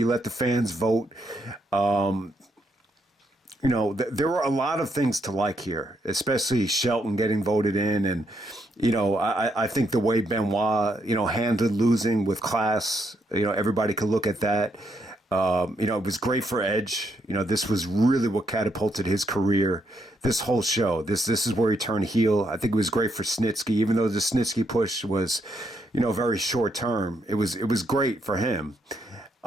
let the fans vote. There were a lot of things to like here, especially Shelton getting voted in. And, I think the way Benoit, handled losing with class, everybody could look at that. It was great for Edge. This was really what catapulted his career. This whole show, this is where he turned heel. I think it was great for Snitsky, even though the Snitsky push was, very short term. It was great for him.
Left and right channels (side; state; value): both; normal; correlation 0.77